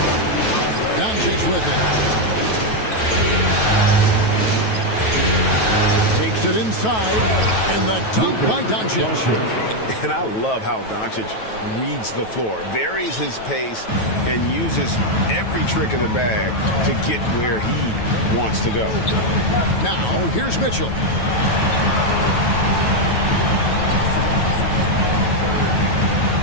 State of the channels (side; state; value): right; late; 9.2 ms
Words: Doncic with it. Takes it inside. And the dunk by Doncic. And I love how Doncic reads the floor, varies his pace, and uses every trick of the bag to get where he wants to go. Now, here's Mitchell.